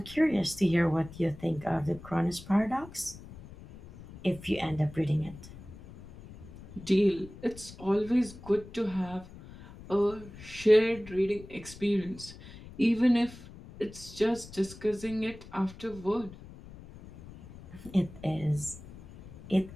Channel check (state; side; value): noise; left; rumble, 17 dB below the sound